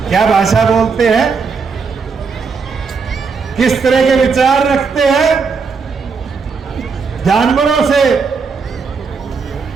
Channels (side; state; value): left; quieter; 5.2 dB